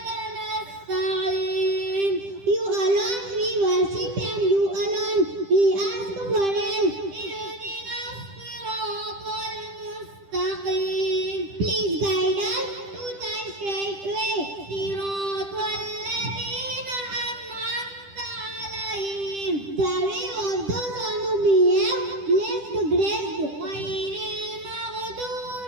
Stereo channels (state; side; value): late; left; 10 ms